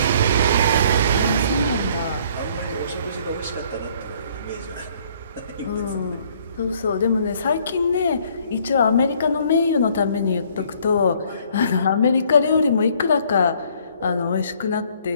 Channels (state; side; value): inverted; both; correlation -0.61